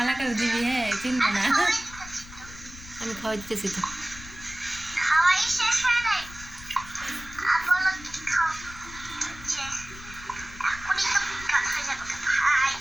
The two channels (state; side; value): noise; left; rumble, 16 dB below the sound